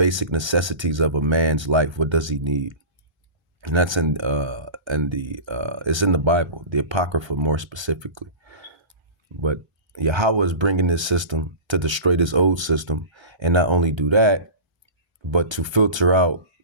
necessities of a man's life? What does he need? And that's it's in the Bible, the Apocrypha more specifically. But Yahweh is bringing this system to destroy this old system, and not only do that, but to filter out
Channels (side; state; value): left; late; 1.3 ms